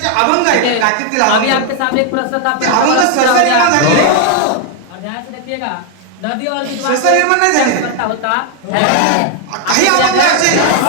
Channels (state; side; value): different; both; correlation 0.00